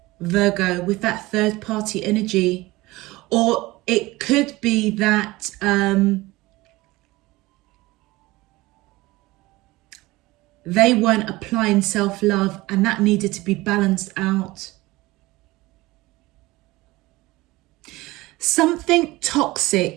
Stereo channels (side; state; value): left; quieter; 20.0 dB